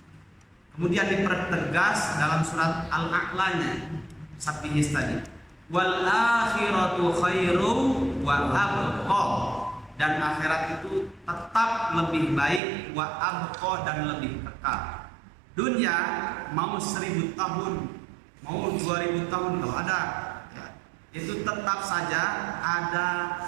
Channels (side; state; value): left; drops out; at 12.6 s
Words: Kemudian dipertegas dalam surat Al-A'lanya, Sabbihis tadi, wal akhiratu khairu wa abqa, dan akhirat itu tetap lebih baik, wa abqa, dan lebih kekal. Dunia mau 1000 tahun, mau 2000 tahun kalau ada, ya, itu tetap saja ada